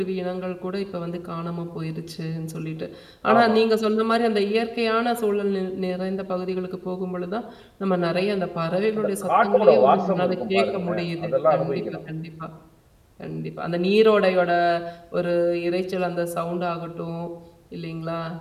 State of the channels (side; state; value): both; identical; correlation 1.00